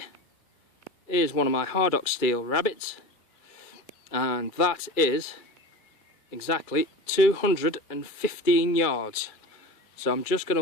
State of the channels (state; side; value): late; right; 2.3 ms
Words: is one of my Hardock steel rabbits, and that is exactly 215 yards. So I'm just going